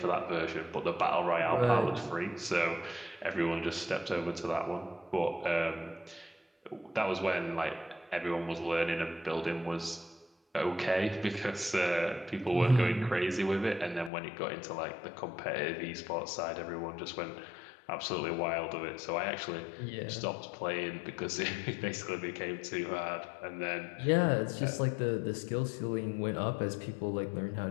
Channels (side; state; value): right; drops out; at 14.1 s